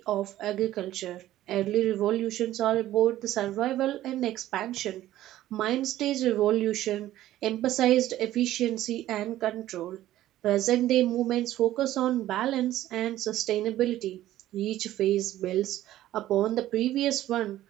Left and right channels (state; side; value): quieter; left; 14.1 dB